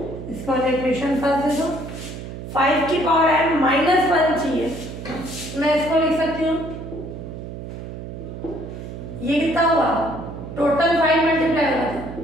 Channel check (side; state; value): right; noise; hum, 10 dB below the sound